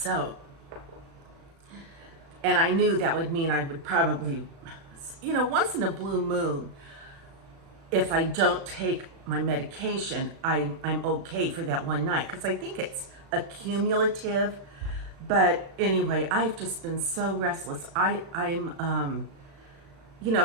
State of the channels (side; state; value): left; late; 36 ms